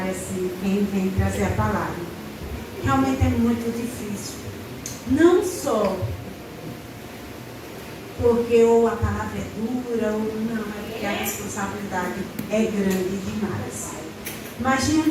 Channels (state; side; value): identical; both; correlation 1.00